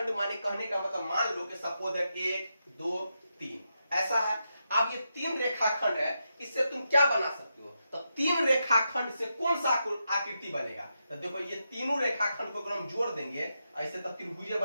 माने कहने का मतलब, मान लो कि सपोज है 1 2 3 ऐसा है। अब ये तीन रेखाखंड है, इससे तुम क्या बना सकते हो, तो तीन रेखाखंड से कौन सा आकृति बनेगा, तो देखो ये तीनों रेखाखंड को अगर हम जोड़ देंगे ऐसे, तब त्रिभुज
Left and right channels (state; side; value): inverted; both; correlation -0.85